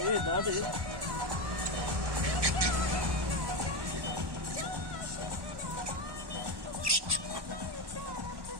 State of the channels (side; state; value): left; late; 1.1 ms